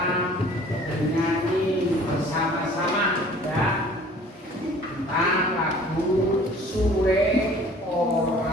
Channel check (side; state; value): both; normal; correlation 0.50